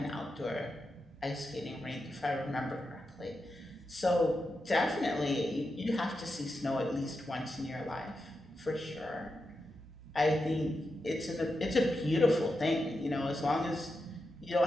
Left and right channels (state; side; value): normal; both; correlation 0.88